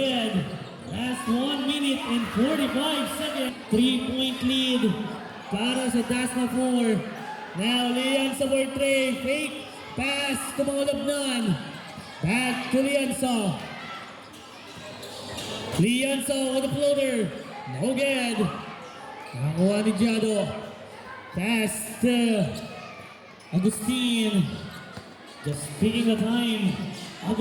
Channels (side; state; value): both; identical; correlation 1.00